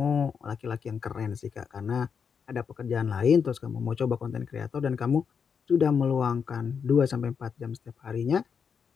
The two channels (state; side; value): quieter; right; 6.5 dB